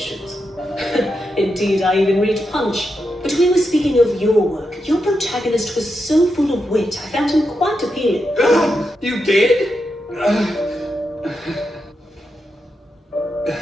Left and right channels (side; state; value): both; normal; correlation 0.86